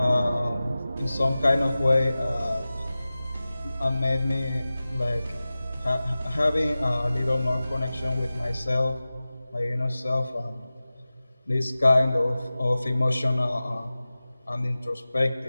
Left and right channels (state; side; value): inverted; both; correlation -0.96